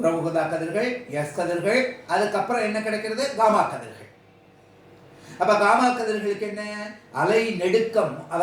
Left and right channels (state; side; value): identical; both; correlation 1.00